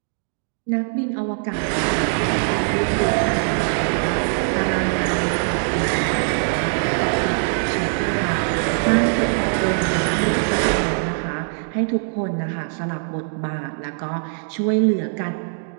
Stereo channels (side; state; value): left; silent; 64 dB below the other